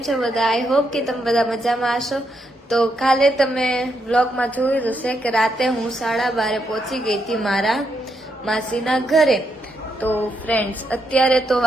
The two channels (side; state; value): both; normal; correlation 0.80